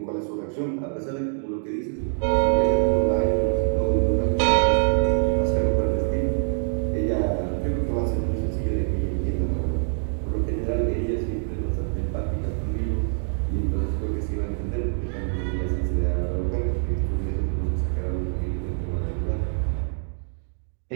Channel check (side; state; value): left; silent; 60 dB below the other